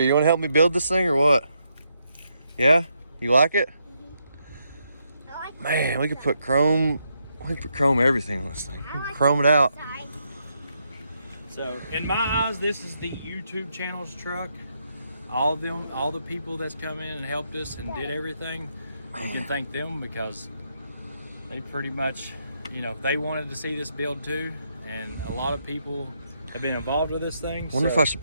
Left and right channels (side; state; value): both; inverted; correlation -0.79